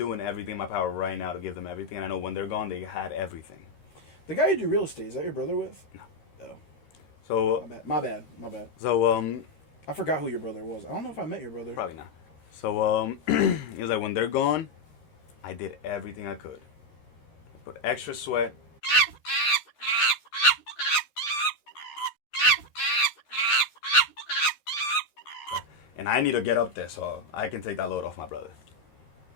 everything in my power right now to give them everything. And I know when they're gone, they had everything. The guy you do real estate, is that your brother with? No. Oh. So, My bad. So, I forgot who your brother was. I don't know if I met your brother. probably not. So, he was like, when they're gone, I did everything I could. I put extra sweat. And I need to get up there so I can take that load off my brother.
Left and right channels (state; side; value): late; right; 13 ms